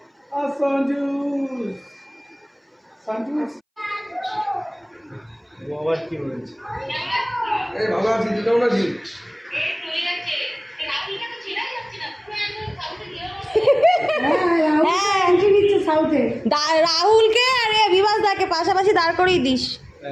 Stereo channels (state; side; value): identical; both; correlation 1.00